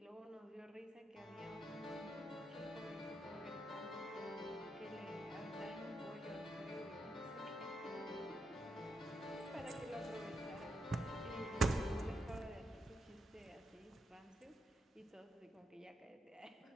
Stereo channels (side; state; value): both; normal; correlation 0.82